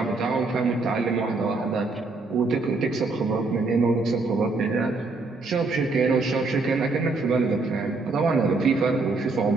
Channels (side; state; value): left; quieter; 3.7 dB